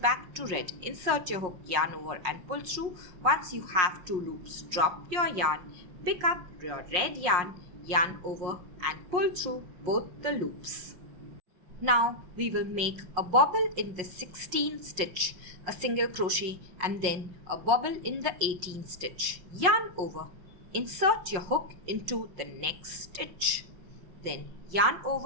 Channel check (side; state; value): left; late; 5.5 ms